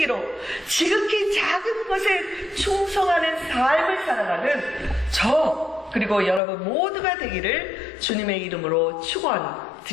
지극히 작은 것에 충성하는 삶을 살아가는 저 그리고 여러분 모두가 되기를 주님의 이름으로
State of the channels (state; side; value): drops out; right; at 6.4 s